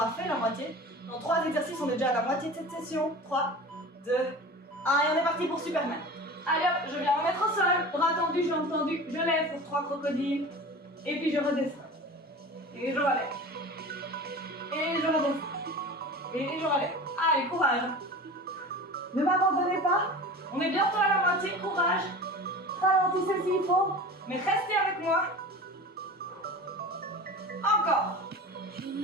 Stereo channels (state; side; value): normal; both; correlation 0.35